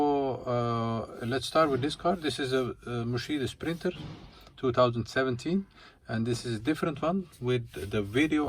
Let's start with this car. This is a Mercedes Sprinter 2017, and this is a different one with the video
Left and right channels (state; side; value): identical; both; correlation 1.00